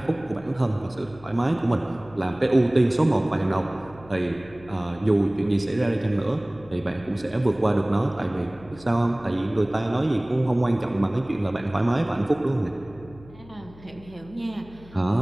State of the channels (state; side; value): noise; left; hum, 21 dB below the sound